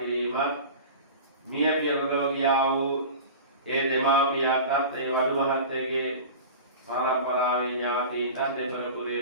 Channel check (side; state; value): both; inverted; correlation -0.34